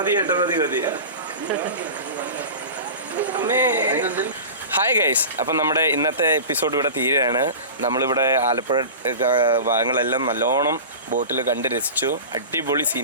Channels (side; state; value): both; inverted; correlation -0.32